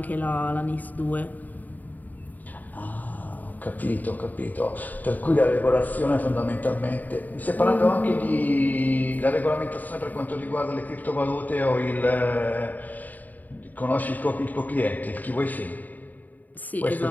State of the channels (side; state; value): right; late; 0.082 ms